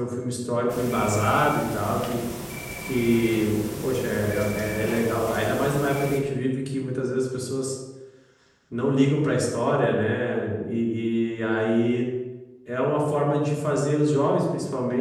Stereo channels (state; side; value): identical; both; correlation 1.00